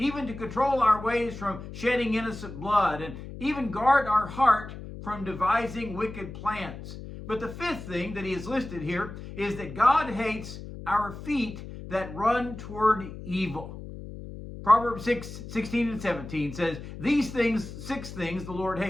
to control our ways from shedding innocent blood, and even guard our heart from devising wicked plans. But the fifth thing that he has listed here is that God hates our feet that run toward evil. Proverbs 6:16 and 17 says, "These things, 6 things the Lord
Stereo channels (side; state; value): left; noise; hum, 11 dB below the sound